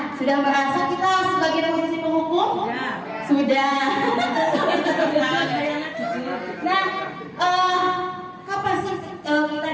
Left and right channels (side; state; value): both; identical; correlation 1.00